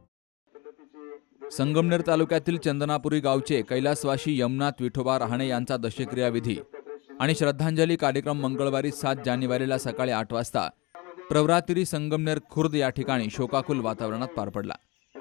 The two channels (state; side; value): quieter; right; 24.1 dB